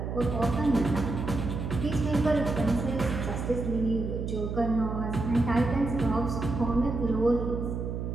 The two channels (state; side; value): noise; right; hum, 4 dB below the sound